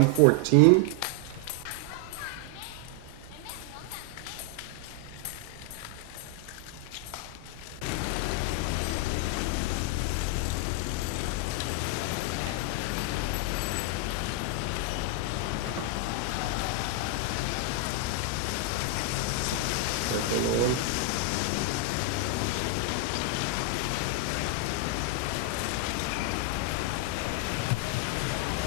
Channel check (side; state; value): both; different; correlation 0.00